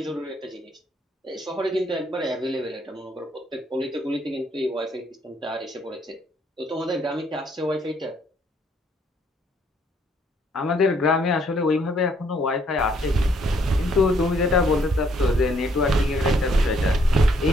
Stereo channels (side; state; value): both; normal; correlation 0.68